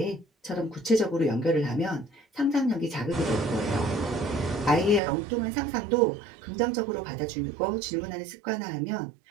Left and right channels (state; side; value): drops out; left; at 5.0 s